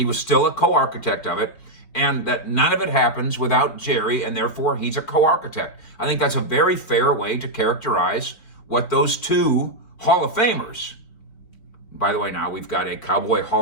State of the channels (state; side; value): late; right; 4.5 ms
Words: was still a co-architect of it, and that none of it happens without Jerry, and therefore he's a co-architect. I think that's a very fair way to characterize what those two Hall of Famers. By the way, now we've got a Cowboy